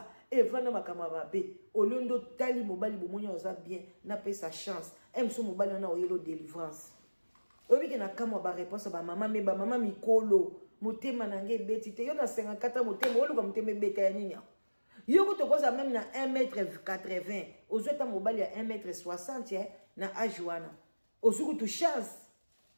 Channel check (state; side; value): inverted; both; correlation -1.00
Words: evanda makama babe olondo tali mobali bomonya oza bien na pesa chance mso mobali na oyelo délivrance obi ke na kama ba réponse ba mama me ba mama mikolo motema nange beti te yo na 54 motema oluka motema beta ya nini yo ko tokoza même na 1m80 ozweta mobali ya 1m60 na âge wana ozuku tu chance